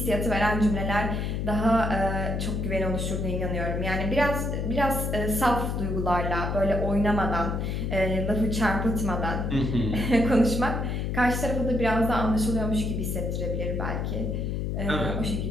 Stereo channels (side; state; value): left; noise; hum, 1 dB below the sound